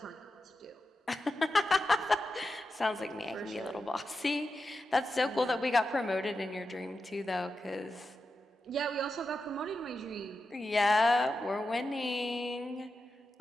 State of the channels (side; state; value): both; normal; correlation 0.90